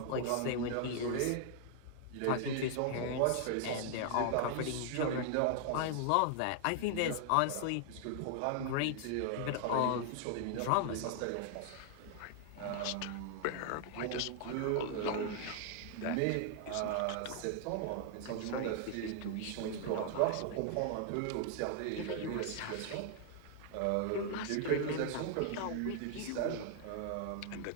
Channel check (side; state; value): both; different; correlation 0.00